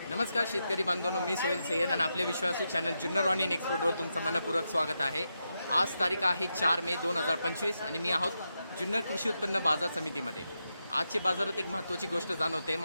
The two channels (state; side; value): inverted; both; correlation -0.86